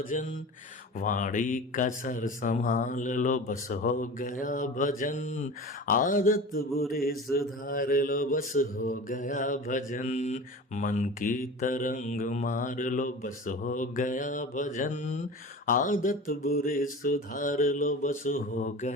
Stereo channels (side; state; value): both; normal; correlation 0.35